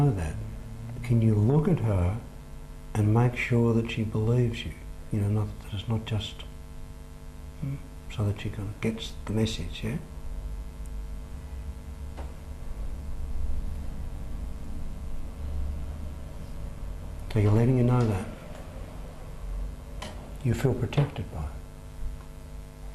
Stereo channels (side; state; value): both; identical; correlation 1.00